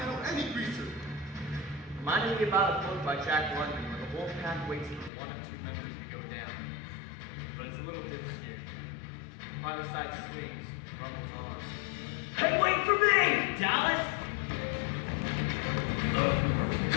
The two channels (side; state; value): right; drops out; at 5.1 s